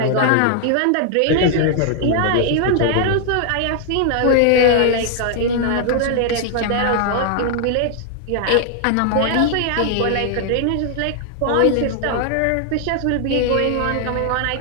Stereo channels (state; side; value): different; both; correlation 0.00